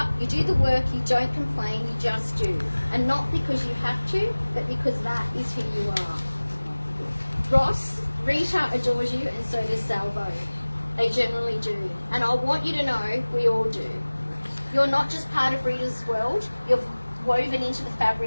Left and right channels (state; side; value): inverted; both; correlation -1.00